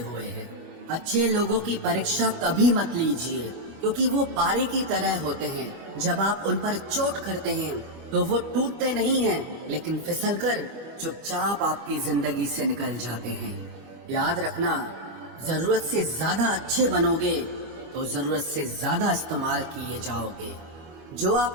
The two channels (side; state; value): left; late; 25 ms